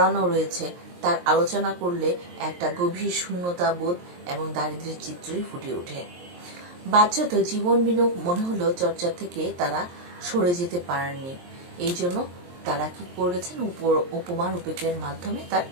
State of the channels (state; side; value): late; left; 23 ms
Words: রয়েছে তার আলোচনা করলে একটা গভীর শূন্যতা বোধ এবং দারিদ্র্যের চিত্রই ফুটে ওঠে। বাহ্যত জীবন বিনোদ মনে হলো চর্চা থেকে তারা সরে যেতে পারেননি। এই জন্য তারা কি করেছেন, উপমা রূপকের মাধ্যমে তার